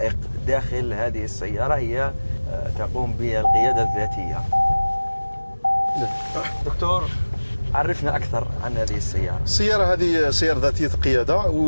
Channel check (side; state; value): both; inverted; correlation -1.00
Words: داخل هذه السيارة، هي تقوم بالقيادة الذاتية. دكتور، عرفنا أكثر عن هذه السيارة. السيارة هذه سيارة ذاتية القيادة،